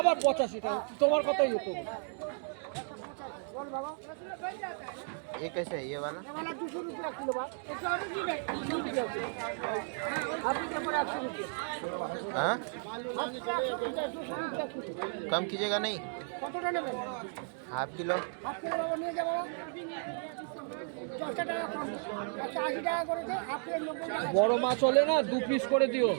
85 টাকা তোমার কথাই হতো। ये कैसे है ये वाला? 200 रुपया किलो बा। এটা অনেক দিবে 200 रुपया। আপনি তো পরে 100 रुपया। हाँ 200 रुपया किलो। कम कीजिएगा नहीं? কতটা নেবেন? Half kilo. হাফ কিলো বাবা নিয়ে যাবো। 10 টাকা কম। 180 টাকা করে দে, হাফ কিলো 90 টাকা। বড় মাছ হলে না 2 পিস করে দিও।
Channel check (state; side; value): silent; left; 55 dB below the other